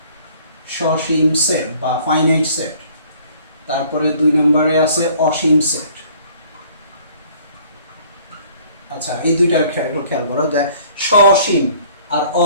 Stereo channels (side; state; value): both; inverted; correlation -0.56